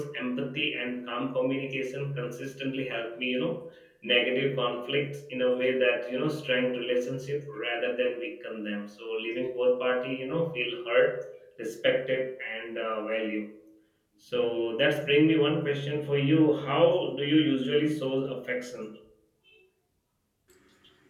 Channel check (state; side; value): identical; both; correlation 1.00